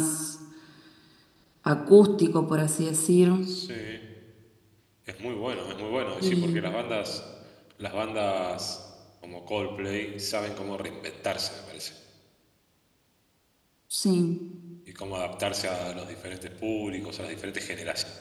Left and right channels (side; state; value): both; identical; correlation 1.00